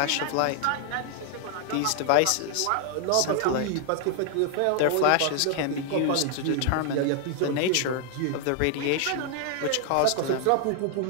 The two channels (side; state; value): both; different; correlation 0.00